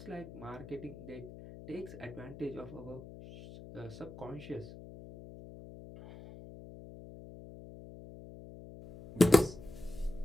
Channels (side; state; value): left; noise; hum, 15 dB below the sound